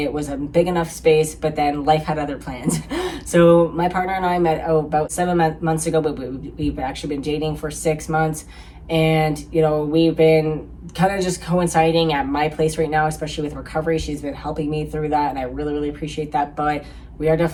was a big enough space, but then life had other plans. So my partner and I met about 7 months ago, but we've actually been dating for 6 months. And, you know, we've been kind of just coinciding at my place right now, especially with recovery. She's been helping me through that, and I really, really appreciate that. But we are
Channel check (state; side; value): identical; both; correlation 1.00